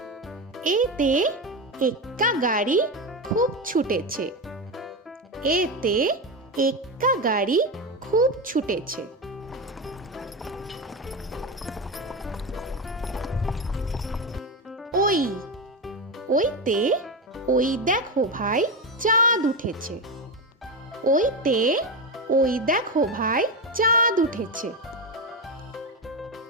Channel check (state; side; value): normal; both; correlation 0.15